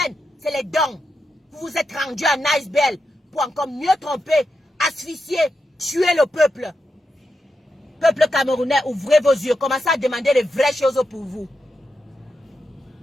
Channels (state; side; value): normal; both; correlation 0.86